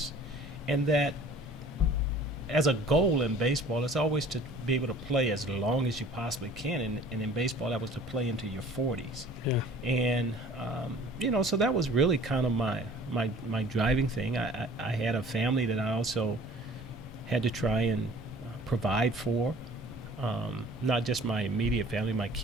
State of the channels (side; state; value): both; normal; correlation 0.48